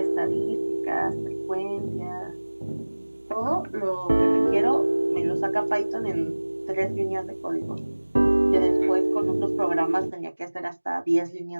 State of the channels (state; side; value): inverted; both; correlation -1.00